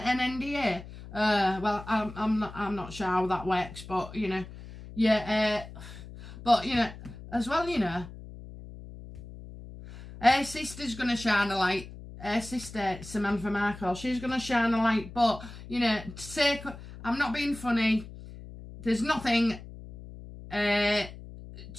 NDA. Well, I'm not sure how that works, but you know, yeah. But you know, as well, you know, her sister's going to shine a light. Her sister, Samantha Markle, she's going to shine a light. But, you know, I'm not being funny. There's nothing, there's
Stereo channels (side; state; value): left; noise; hum, 14 dB below the sound